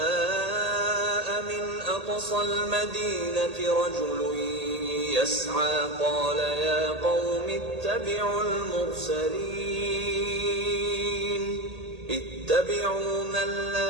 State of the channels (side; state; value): left; late; 1.8 ms